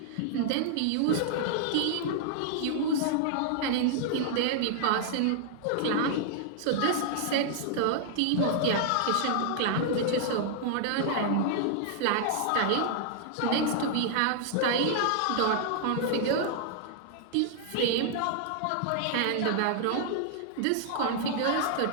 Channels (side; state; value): both; different; correlation -0.01